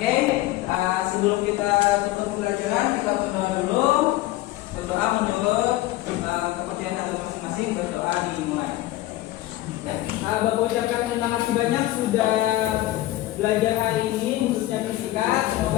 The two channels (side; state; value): right; quieter; 16.3 dB